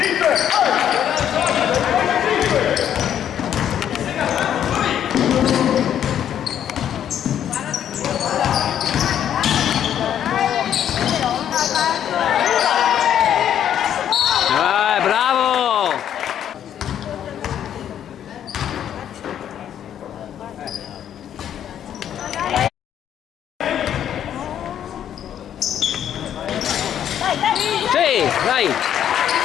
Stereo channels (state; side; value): quieter; right; 9.9 dB